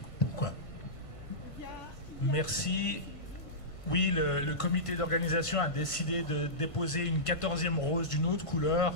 pourquoi. Merci. Oui, le comité d'organisation a décidé de déposer une 14e rose d'une autre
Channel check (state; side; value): late; right; 1.5 ms